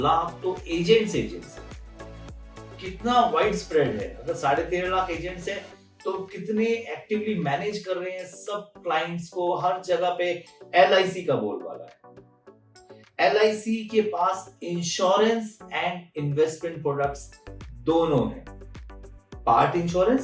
लाख तो एजेंट्स हैं। कितना वाइड स्प्रेड है। अगर 13.5 लाख एजेंट्स हैं तो कितने एक्टिवली मैनेज कर रहे हैं सब क्लाइंट्स को, हर जगह पे LIC का बोलबाला है। LIC के पास इंश्योरेंस एंड इन्वेस्टमेंट प्रोडक्ट्स दोनों हैं, पार्ट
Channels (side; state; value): both; identical; correlation 1.00